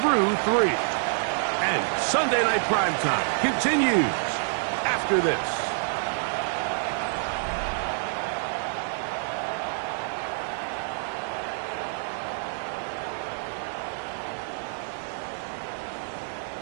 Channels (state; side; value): silent; left; 60 dB below the other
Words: 3. And Sunday Night Primetime continues after this.